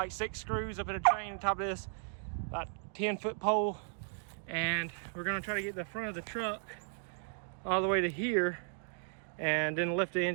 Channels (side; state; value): left; silent; 54 dB below the other